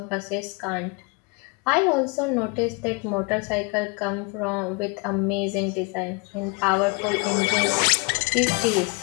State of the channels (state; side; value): quieter; right; 31.5 dB